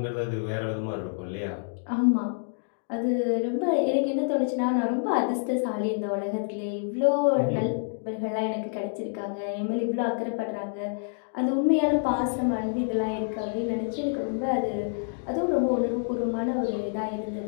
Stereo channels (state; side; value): silent; right; digital silence